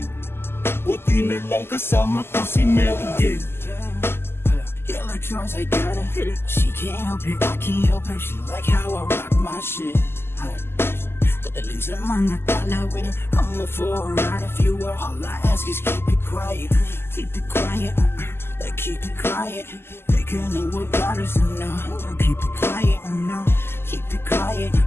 Buti na lang kasama ko si Mary Jane. Electrons, I gotta hit it. She can't help it, I can't help her. She like how I rock my shit. Dadaling sa mga tala with it. I'm for a ride if you were. All I ask is keep it quiet. Keep it quiet, like keep it quiet. They can know what got us enough. Keep it quiet, no. Keep it quiet,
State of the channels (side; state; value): right; late; 0.12 ms